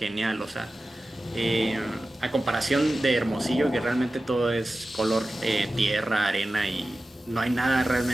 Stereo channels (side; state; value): both; normal; correlation 0.95